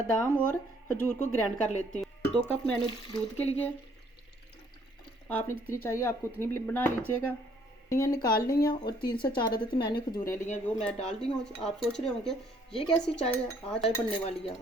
और खजूर को ग्राइंड कर लेती हूँ। 2 कप मैंने दूध के लिए, आपने जितनी चाहिए आपको उतनी भी बना लीजिएगा। ये निकाल ली हैं और 3 से 4 अदद मैंने खजूरें ली हैं, वो मैं डाल दी हूँ। आप सोच रहे होंगे ये कैसी चाय है, आज चाय बनने वाली है।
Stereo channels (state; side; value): normal; both; correlation 0.63